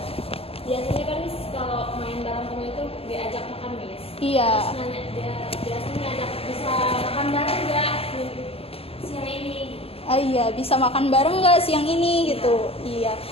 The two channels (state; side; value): late; right; 0.28 ms